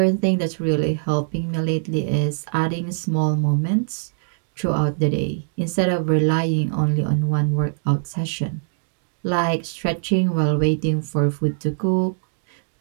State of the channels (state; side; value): silent; left; digital silence